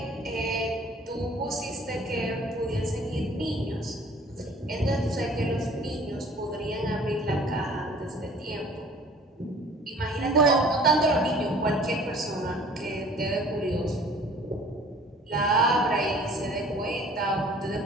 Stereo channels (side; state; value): both; normal; correlation 0.50